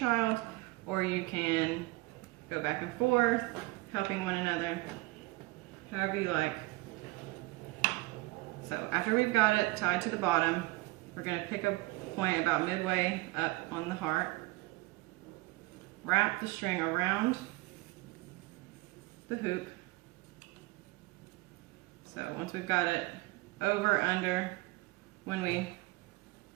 or you can go back and forth, helping one another. However you like. So after we've got it tied to the bottom, we're going to pick a point about midway up on the heart, wrap the string around the hoop. So once we've got it over, under, when we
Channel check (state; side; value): quieter; left; 21.9 dB